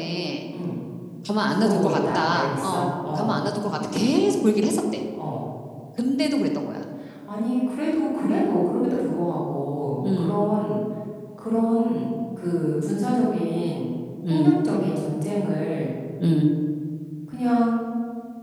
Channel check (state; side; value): identical; both; correlation 1.00